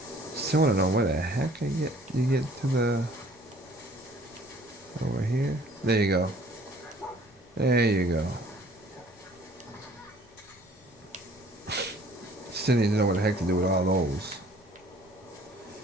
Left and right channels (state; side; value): normal; both; correlation 0.55